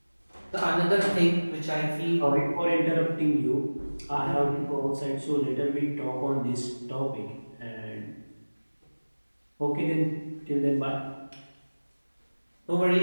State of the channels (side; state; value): both; inverted; correlation -1.00